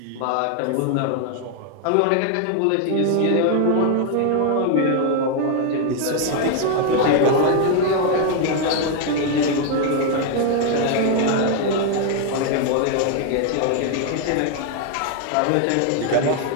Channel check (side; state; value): both; different; correlation 0.00